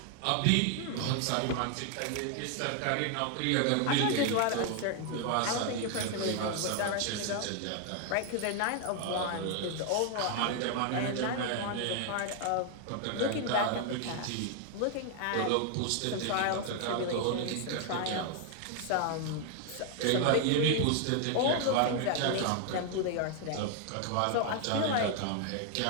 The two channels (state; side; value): different; both; correlation 0.00